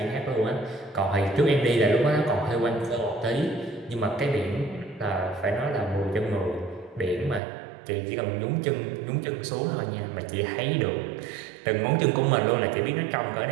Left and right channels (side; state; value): left; drops out; at 7.4 s